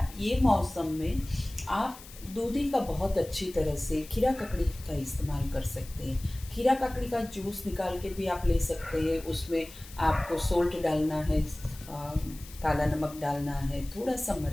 ये मौसम में आप दूधी का बहुत अच्छी तरह से खीरा ककड़ी का इस्तेमाल कर सकते हैं। खीरा ककड़ी का जूस निकाल के भी आप ले सकते हैं। उसमें आपको सोल्ट डालना है, काला नमक डालना है, थोड़ा सा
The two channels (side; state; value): left; noise; hiss, 18 dB below the sound